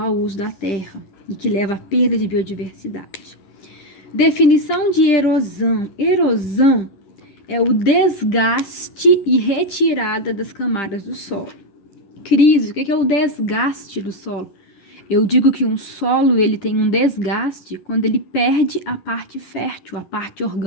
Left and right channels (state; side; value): late; right; 10 ms